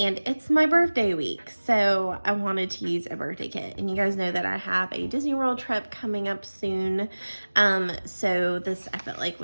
my birthday week, so I wanted to use a birthday kit. And you guys know that I have a Disney World trip coming up soon, so this I felt like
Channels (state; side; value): inverted; both; correlation -1.00